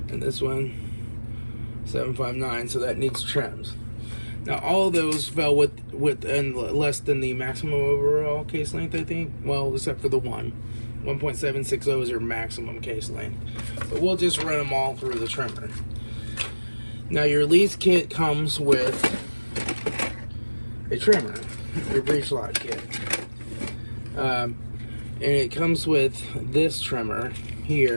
And this one 759, so that needs trims. Now all of those fell within less than the maximum overall case length, I think. Well, except for the 1.760 is your maximum case length. But we'll just run them all through the trimmer. Now your lease kit comes with a trimmer, your breech lock kit. And it comes with this trimmer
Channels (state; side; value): inverted; both; correlation -1.00